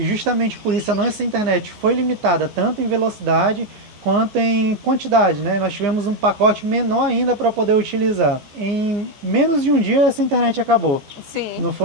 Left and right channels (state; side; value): late; left; 14 ms